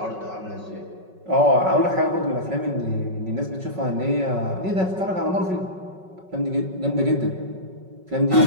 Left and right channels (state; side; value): late; left; 5.4 ms